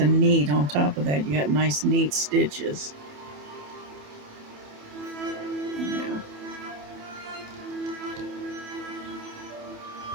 neat. On top of that, you got nice neat stitches. Yeah.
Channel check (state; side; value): late; left; 27 ms